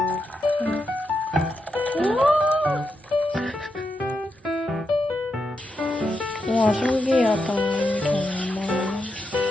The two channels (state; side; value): normal; both; correlation 0.85